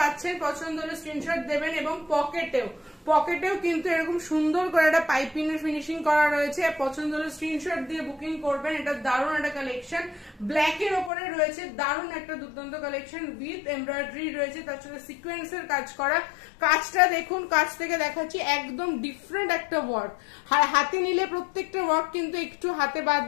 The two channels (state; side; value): drops out; right; at 11.1 s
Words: পছন্দ হলে স্ক্রিনশট দেবেন। এবং পকেটেও কিন্তু এরকম সুন্দর করে একটা পাইপিং এর ফিনিশিং করা রয়েছে। পছন্দ হলে স্ক্রিনশট দিয়ে বুকিং করবেন। এটা দারুণ একটা কালেকশন, ব্ল্যাক এর উপরে রয়েছে। দারুণ একটা দুর্দান্ত কালেকশন উইথ এমব্রয়ডারি রয়েছে, তার সাথে সিকোয়েন্সের কাজ করা। কাজটা দেখুন, কাজ থেকে দেখাচ্ছি, একদম ডিফারেন্ট একটা ওয়ার্ক। হাতে নিলে প্রত্যেকটা ওয়ার্ক কিন্তু একটু হাতে